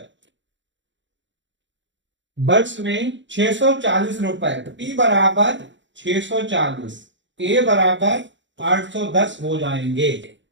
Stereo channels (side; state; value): left; late; 0.54 ms